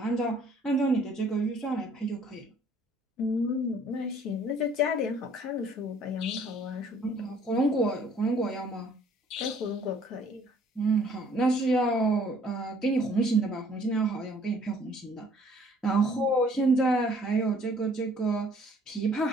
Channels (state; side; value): normal; both; correlation 0.59